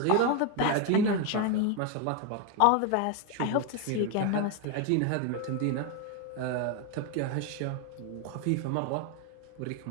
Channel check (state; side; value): different; both; correlation 0.01